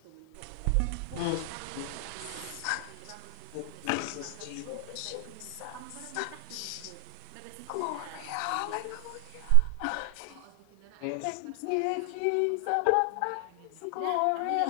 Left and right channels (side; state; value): both; different; correlation 0.00